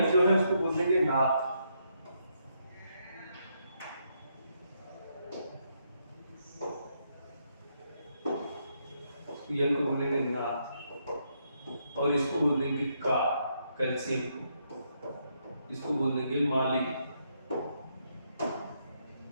जो है उसको बोलेंगे नाथ। यम को बोलेंगे नाथ, और इसको बोलेंगे का, कैल्शियम को, इसको बोलेंगे माली।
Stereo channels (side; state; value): both; inverted; correlation -0.77